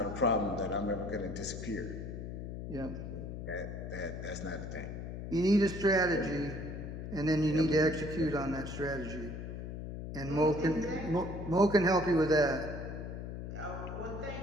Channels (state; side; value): noise; left; hum, 7 dB below the sound